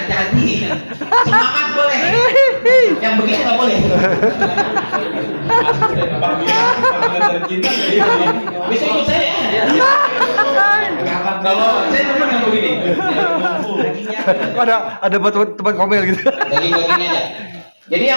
Semangat boleh. Yang begitu nggak boleh. Bisa ikut saya. Kalau saya teman yang begini. Ada buat teman komel gitu. Daging-dagingnya aja. Jadi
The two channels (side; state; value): both; inverted; correlation -1.00